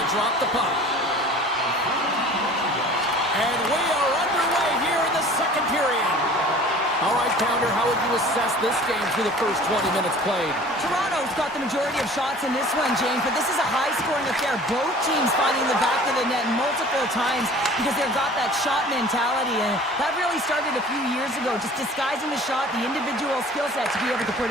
drop the puck. And we are underway here in the second period. All right, Pounder, how would you assess this game through the first 20 minutes played? Toronto's got the majority of shots in this one, James, but this is a high-scoring affair. Both teams finding the back of the net multiple times because they've got that shot mentality, and that really started a few years ago, just disguising the shot, the individual skill set to be able to put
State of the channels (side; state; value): both; normal; correlation 0.46